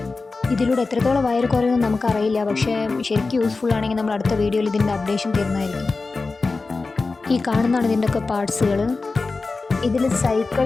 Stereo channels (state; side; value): quieter; right; 3.9 dB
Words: ഇതിലൂടെ എത്രത്തോളം വയറ് കുറയുമെന്ന് നമുക്കറിയില്ല, പക്ഷേ ശരിക്കും യൂസ്ഫുൾ ആണെങ്കിൽ നമ്മൾ അടുത്ത വീഡിയോയിൽ ഇതിൻ്റെ അപ്ഡേഷൻ തരുന്നതായിരിക്കും. ഈ കാണുന്നതാണ് ഇതിൻ്റെയൊക്കെ പാർട്സുകൾ. ഇതിൽ